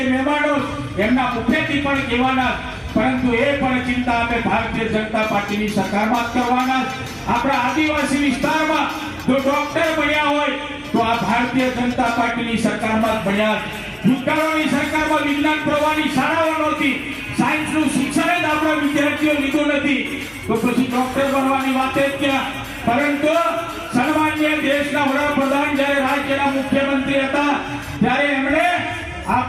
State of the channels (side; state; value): both; identical; correlation 1.00